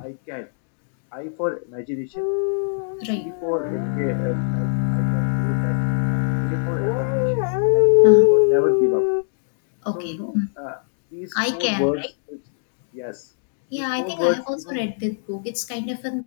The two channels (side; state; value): right; silent; digital silence